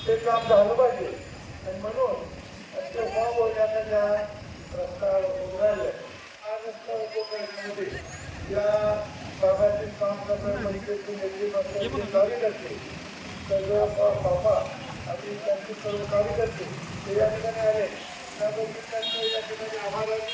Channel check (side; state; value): both; identical; correlation 1.00